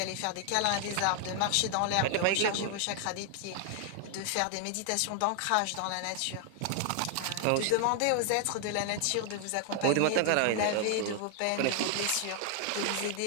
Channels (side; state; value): both; different; correlation 0.00